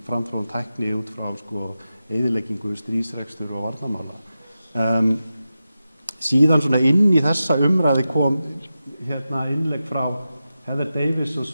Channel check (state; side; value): inverted; both; correlation -0.92